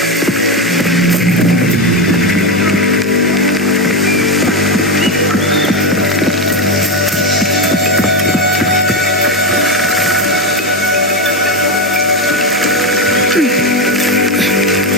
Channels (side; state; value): both; normal; correlation 0.12